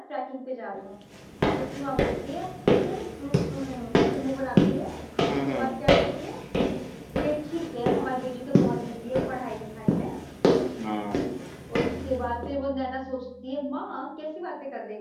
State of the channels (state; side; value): identical; both; correlation 1.00